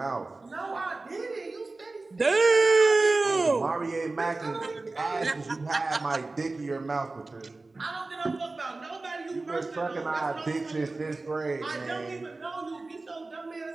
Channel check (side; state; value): left; quieter; 3.3 dB